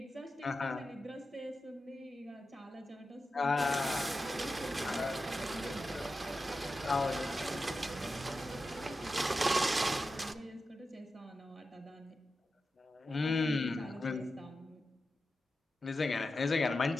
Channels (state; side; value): normal; both; correlation 0.91